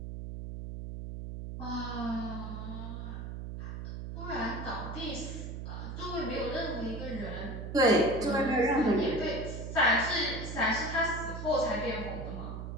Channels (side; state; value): right; noise; hum, 7 dB below the sound